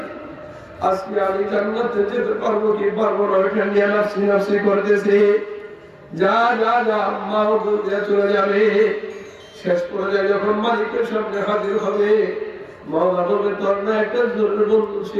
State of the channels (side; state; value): both; identical; correlation 1.00